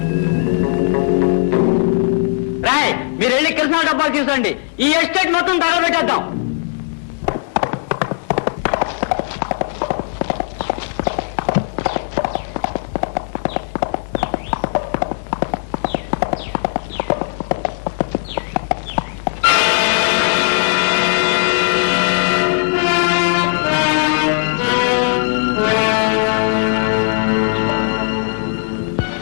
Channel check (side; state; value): right; silent; 62 dB below the other